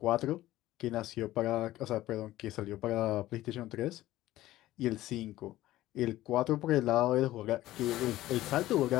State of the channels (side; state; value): right; quieter; 15.5 dB